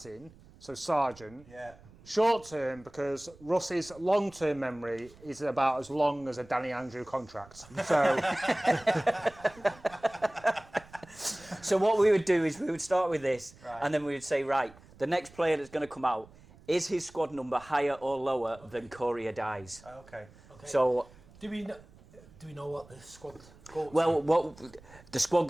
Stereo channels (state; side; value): noise; right; rumble, 23 dB below the sound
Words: so sergeant. Yeah. Short term because Russ's long term memory is about as long as a Danny Andrew contract. So, So what we would do is we would start with this, and then we would say, right, the next player that's going to come out, is his squad number higher or lower than Corey Dies? Okay. So, Do we know what the squad goes? well, what the squad